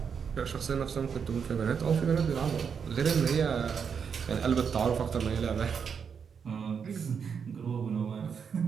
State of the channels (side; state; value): left; quieter; 6.7 dB